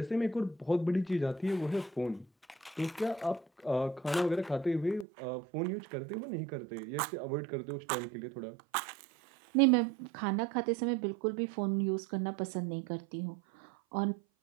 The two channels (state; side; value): drops out; left; at 5.1 s